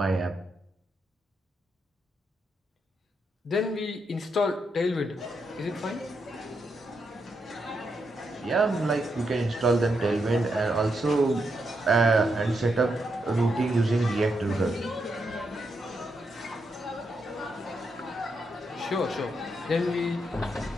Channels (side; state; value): both; normal; correlation 0.82